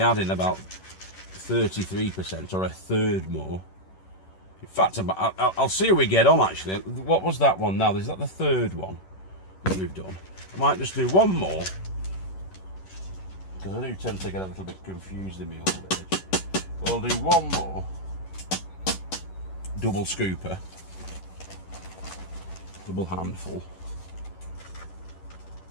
about 33% or a third more. In fact, I'll see how we get on actually. What was that one now? Is that the 3rd one that we've done? I might just do 1 more, because I do tend to get a little bit confused in my old age. But I'll do 1 more double scooper, double handful,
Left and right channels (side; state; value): right; late; 11 ms